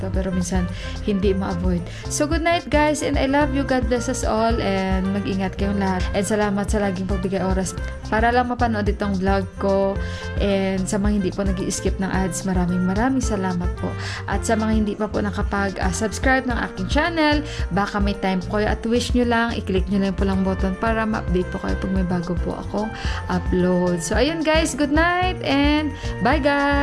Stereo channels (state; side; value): identical; both; correlation 1.00